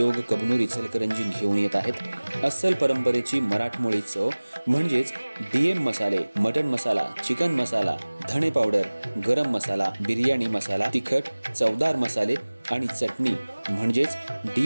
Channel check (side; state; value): both; inverted; correlation -1.00